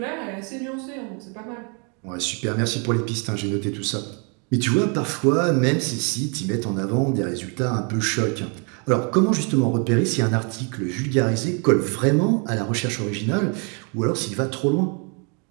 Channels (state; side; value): quieter; left; 36.1 dB